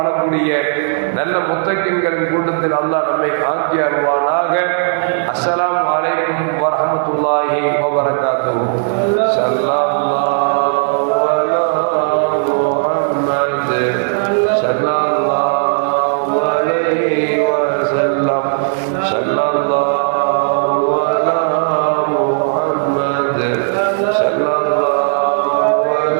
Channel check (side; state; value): left; silent; digital silence